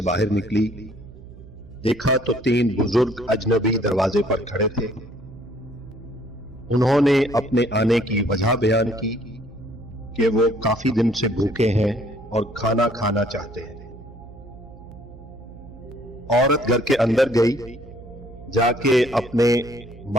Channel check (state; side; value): noise; right; hum, 18 dB below the sound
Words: बाहर निकली। देखा तो 3 बुजुर्ग अजनबी दरवाजे पर खड़े थे। उन्होंने अपने आने की वजह बयान की कि वो काफी दिन से भूखे हैं और खाना खाना चाहते हैं। औरत घर के अंदर गई, जाके अपने